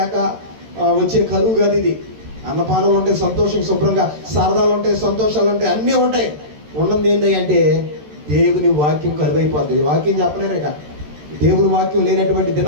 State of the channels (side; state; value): left; late; 13 ms